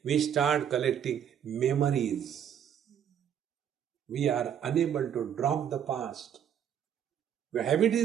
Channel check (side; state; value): left; quieter; 9.0 dB